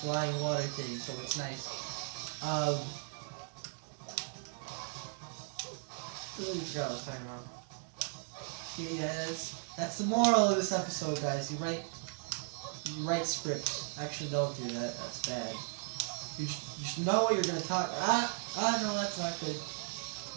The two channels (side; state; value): left; silent; 53 dB below the other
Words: flying water thing, so it's nice. What I was talking about? Yeah, that's the moral of this episode, guys. You write scripts. Actually, don't do that. That's bad. You should know what you're gonna talk. No, that's not good.